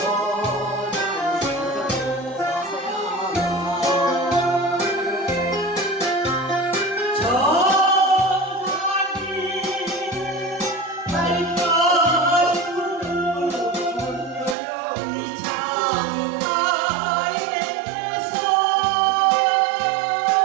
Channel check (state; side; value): drops out; left; at 14.6 s